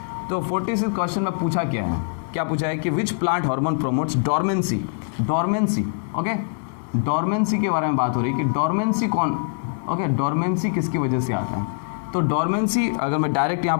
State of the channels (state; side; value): silent; right; 63 dB below the other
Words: तो 46 क्वेश्चन में पूछा क्या पूछा है कि which plant hormone promotes dormancy, okay, dormancy के बारे में बात हो रही है कि डोरमेंसी कौन, ओके, डोरमेंसी किसकी वजह से आता है। तो डोरमेंसी अगर मैं डायरेक्ट यहाँ